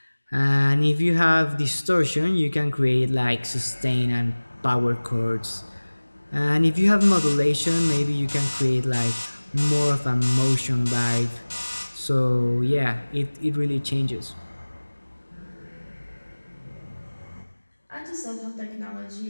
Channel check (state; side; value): inverted; both; correlation -1.00